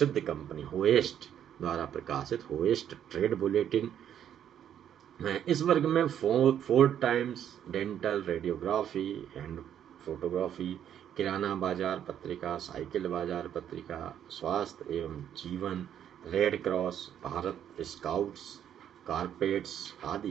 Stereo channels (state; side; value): quieter; left; 9.8 dB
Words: कंपनी होएस्ट द्वारा प्रकाशित होएस्ट ट्रेड बुलेटिन। इस वर्ग में Ford Times, dental, radiography and photography, किराना बाजार पत्रिका, साइकिल बाजार पत्रिका, स्वास्थ्य एवं जीवन, red cross, Bharat scouts, carpets